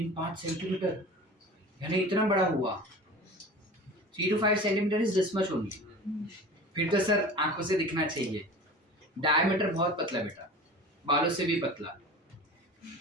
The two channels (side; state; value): both; normal; correlation 0.37